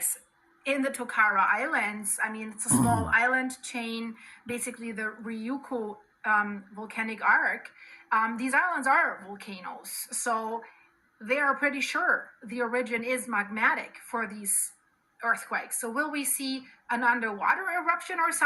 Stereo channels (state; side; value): identical; both; correlation 1.00